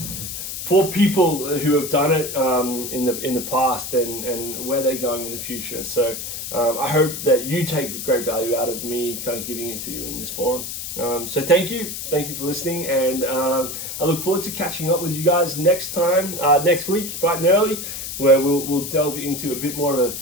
For people who have done it in the past and where they're going in the future. So I hope that you take great value out of me kind of giving it to you in this forum. So thank you for listening, and I look forward to catching up with you guys next week, bright and early, where we'll delve into a bit more of a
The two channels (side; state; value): left; noise; hiss, 7 dB below the sound